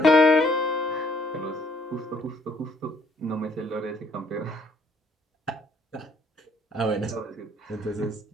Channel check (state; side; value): normal; both; correlation 0.65